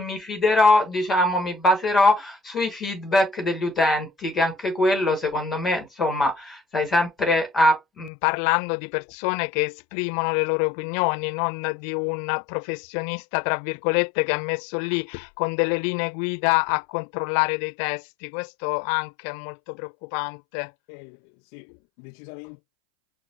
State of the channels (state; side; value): drops out; right; at 8.1 s